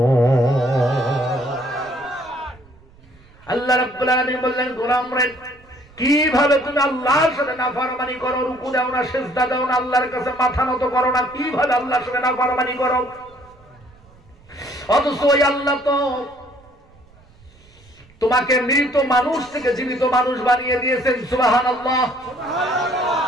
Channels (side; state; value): right; noise; rumble, 27 dB below the sound